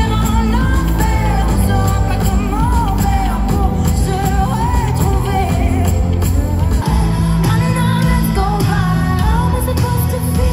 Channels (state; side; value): identical; both; correlation 1.00